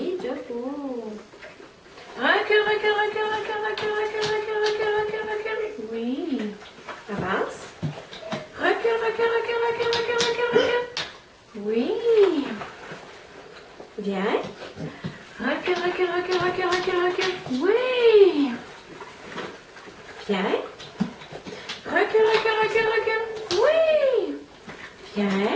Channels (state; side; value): identical; both; correlation 1.00